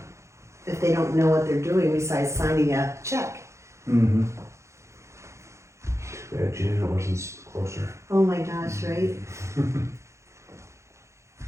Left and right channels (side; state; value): left; late; 0.14 ms